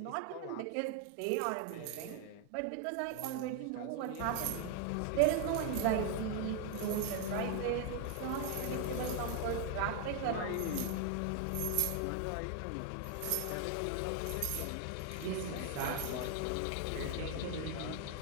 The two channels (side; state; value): both; different; correlation 0.00